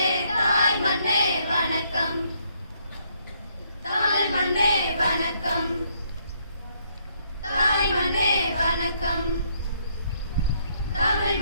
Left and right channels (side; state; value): both; inverted; correlation -0.71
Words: தாய் மண்ணே வணக்கம், தாய் மண்ணே வணக்கம், தாய் மண்ணே வணக்கம், தமிழ்